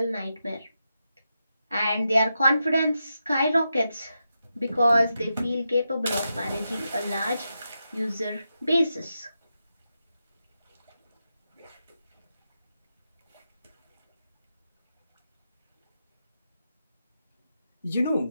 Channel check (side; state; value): both; inverted; correlation -0.87